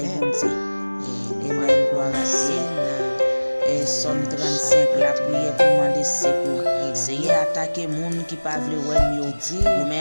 Dieu. Amen. Gloire à Dieu. Et Somme 35 la prière pour demander secours. C'est attaquer moun qui pas vle wè yo. Ou mais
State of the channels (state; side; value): inverted; both; correlation -1.00